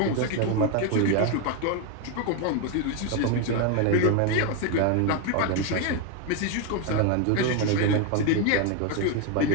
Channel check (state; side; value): different; both; correlation 0.02